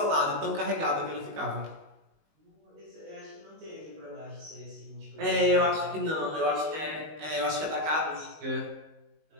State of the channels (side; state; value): left; late; 19 ms